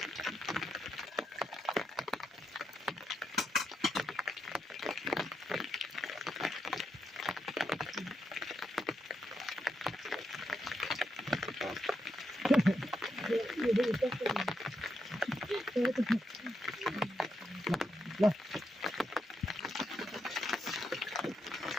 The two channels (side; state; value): both; normal; correlation 0.82